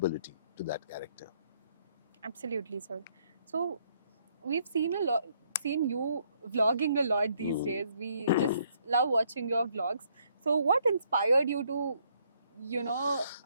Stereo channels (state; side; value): inverted; both; correlation -0.69